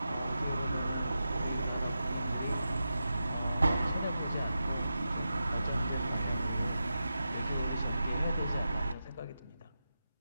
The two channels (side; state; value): both; inverted; correlation -0.90